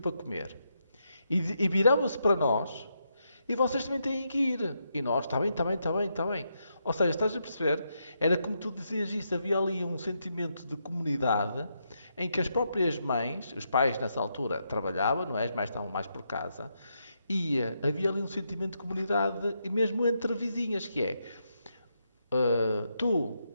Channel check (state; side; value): inverted; both; correlation -0.81